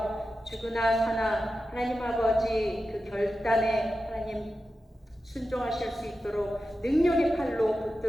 죽으나 사나 하나님 아버지 그 결단에 하나님 순종하실 수 있도록 능력의 팔로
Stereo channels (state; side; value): normal; both; correlation 0.92